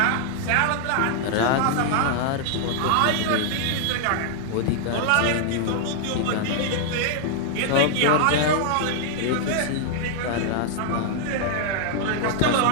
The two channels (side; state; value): both; different; correlation 0.00